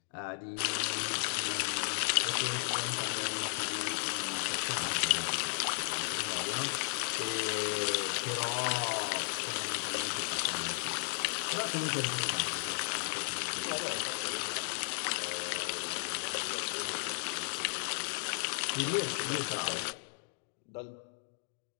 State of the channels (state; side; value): silent; right; digital silence